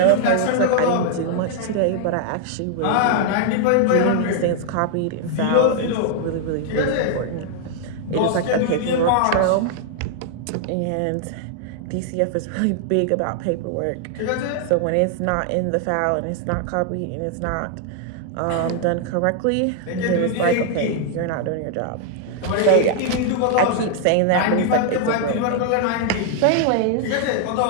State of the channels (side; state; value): both; different; correlation 0.00